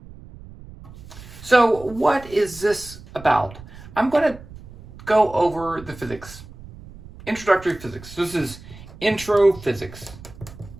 So what is this about? I'm going to go over the physics. Introductory physics. This is intro physics.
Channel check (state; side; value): noise; right; rumble, 17 dB below the sound